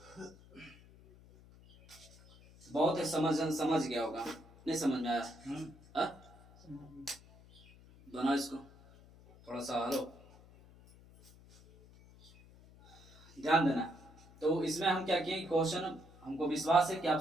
बहुत है, समझ गया होगा, नहीं समझ में आया, बनाओ इसको, थोड़ा सा हलो, ध्यान देना। तो इसमें हम क्या किए, क्वेश्चन हमको विश्वास है कि आप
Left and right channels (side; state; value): left; noise; hum, 23 dB below the sound